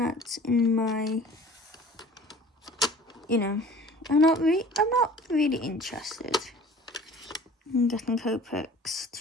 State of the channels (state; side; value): normal; both; correlation 0.46